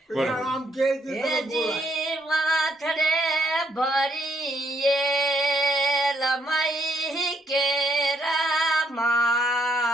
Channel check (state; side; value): normal; both; correlation 0.72